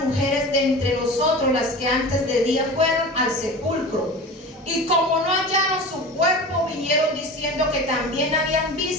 mujeres de entre nosotros, las que antes de día fueron al sepulcro, y como no hallaron su cuerpo, vinieron diciendo que también habían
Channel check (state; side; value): normal; both; correlation 0.34